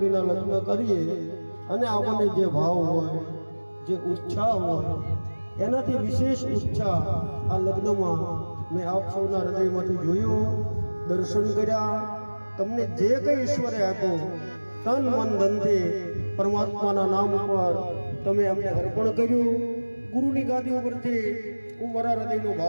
લગ્ન કરીએ અને આપણને જે ભાવ હોય, જે ઉત્સાહ હોય, એનાથી વિશેષ ઉત્સાહ આ લગ્નમાં મેં આપ સૌના હૃદયમાંથી જોયું, દર્શન કર્યા. તમને જે કંઈ ઈશ્વરે આપ્યું તન મન ધનથી પરમાત્માના નામ ઉપર તમે અમને અર્પણ કર્યું. ગુરુની ગાદી ઉપરથી હું મારા હૃદયનો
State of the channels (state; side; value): inverted; both; correlation -1.00